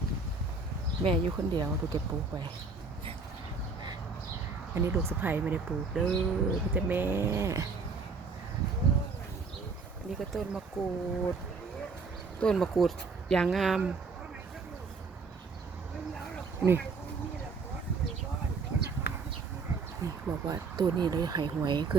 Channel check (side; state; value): left; quieter; 4.5 dB